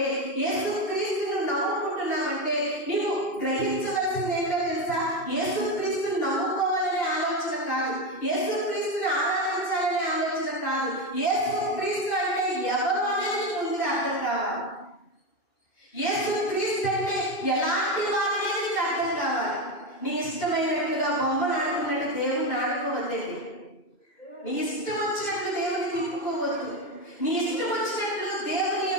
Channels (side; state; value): right; late; 2.5 ms